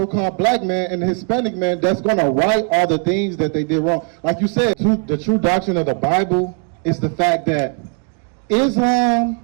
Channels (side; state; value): left; quieter; 39.9 dB